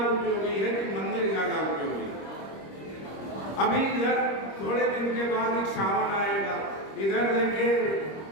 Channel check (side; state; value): right; late; 26 ms